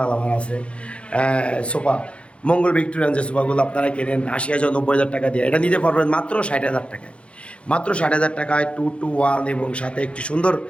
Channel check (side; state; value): right; late; 0.059 ms